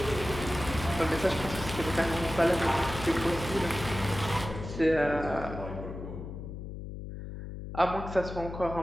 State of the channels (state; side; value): noise; left; hum, 9 dB below the sound